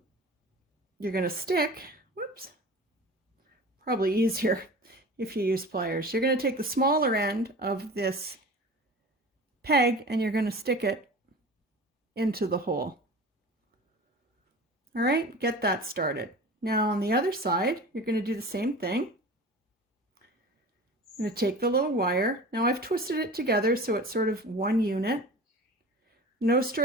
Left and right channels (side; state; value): both; normal; correlation 0.37